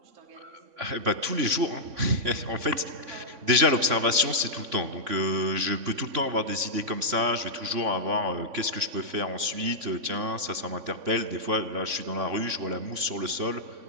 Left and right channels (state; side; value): late; left; 3.6 ms